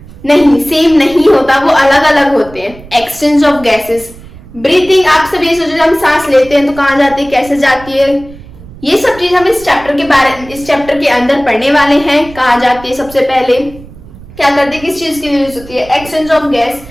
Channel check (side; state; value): right; noise; rumble, 19 dB below the sound